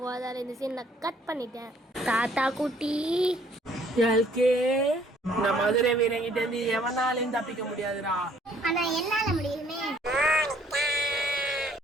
அதால் இந்த சீன் நான் கட் பண்ணிட்டேன். தாத்தா குட்டி எல்கே, இந்த மதுரை வீரங்கிட்ட இருந்து எவனாலையும் தப்பிக்க முடியாதுடா. ஆனா என்னால முடியுமே.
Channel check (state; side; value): normal; both; correlation 0.61